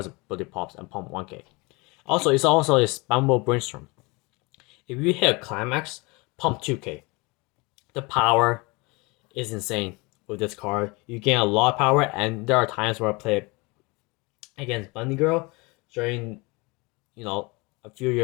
ability pops and pump 1k. Also, it's also a spammable brainstorm. If you hit a climax, pump 2k. The power is insane with this card. You gain a lot of power, and there are times where I play against Bunny Girl during, a few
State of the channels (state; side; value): quieter; right; 26.5 dB